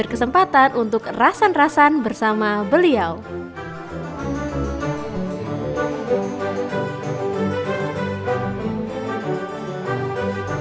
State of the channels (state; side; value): identical; both; correlation 1.00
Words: untuk rasan-rasan bersama beliau.